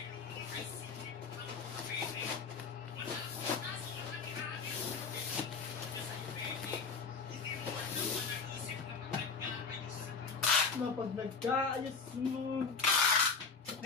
Pag nagkaayos mo.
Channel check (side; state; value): right; quieter; 5.2 dB